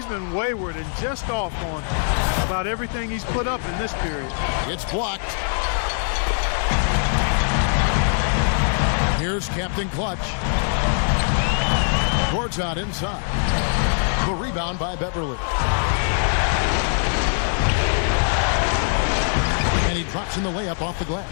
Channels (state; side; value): silent; right; digital silence